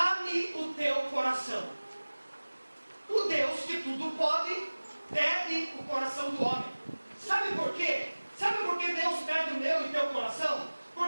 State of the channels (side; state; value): both; inverted; correlation -1.00